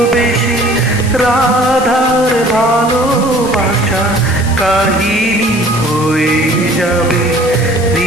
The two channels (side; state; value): left; noise; hiss, 14 dB below the sound